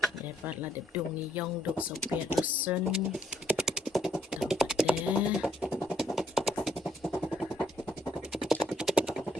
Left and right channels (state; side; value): normal; both; correlation 0.68